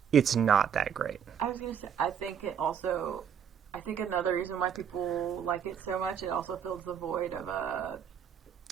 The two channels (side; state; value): left; quieter; 8.1 dB